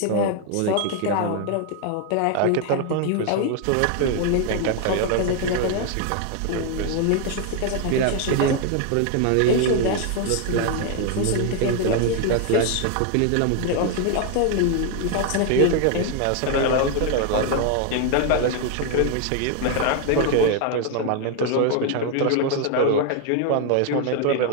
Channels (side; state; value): both; different; correlation 0.00